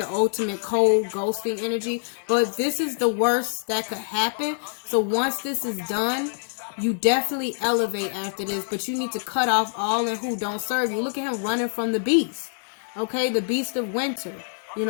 ultimate cold ghosting energy. But this is the worst that could happen. So once this is done, you definitely elevate after this. But you need to cut off all and who don't serve you. Look at him running from the beast. Okay, the beast of winter. You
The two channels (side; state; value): right; silent; digital silence